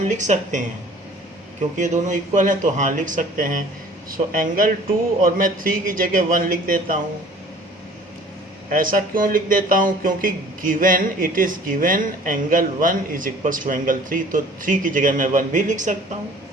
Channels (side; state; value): both; normal; correlation 0.49